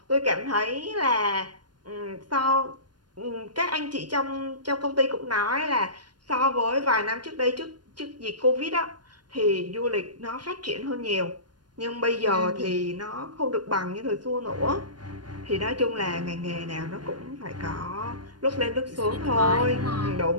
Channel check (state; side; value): late; left; 0.70 ms